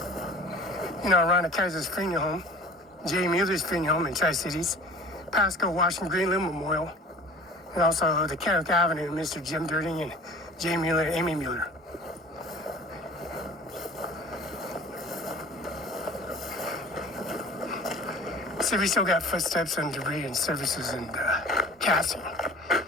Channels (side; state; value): both; normal; correlation 0.44